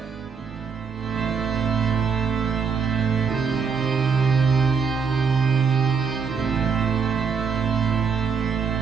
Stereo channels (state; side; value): quieter; left; 5.9 dB